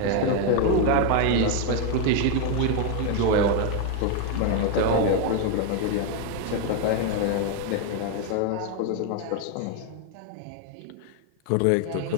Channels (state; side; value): different; both; correlation 0.01